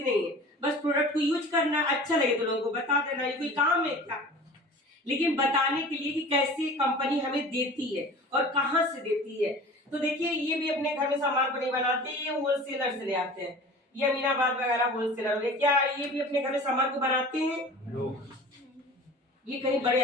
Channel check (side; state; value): both; normal; correlation 0.41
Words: नहीं है। बस प्रोडक्ट को यूज करना, अच्छा लगे तो लोगों को बता देना, ये कोई काम है क्या? लेकिन बताने के लिए कि कैसे कंपनी हमें देती है और कहां से देती है। तो देखिए, ये भी अपने घर में सामान को नहीं बनाते, ये होलसेलर से ले आते हैं। ये अमीनाबाद वगैरह होलसेलर हो गए। क्या ये भी अपने घर में सामान को बनाते हैं? ये कहीं